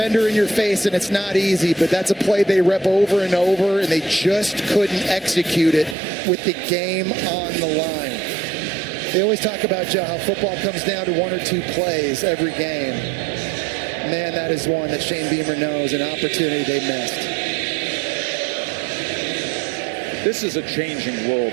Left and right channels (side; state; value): left; drops out; at 6.0 s